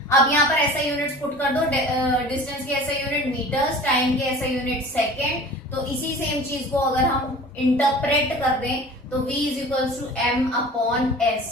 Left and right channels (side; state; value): both; normal; correlation 0.42